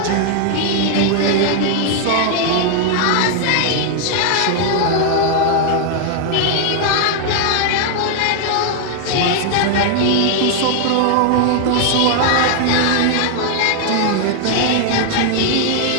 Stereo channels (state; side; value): different; both; correlation 0.00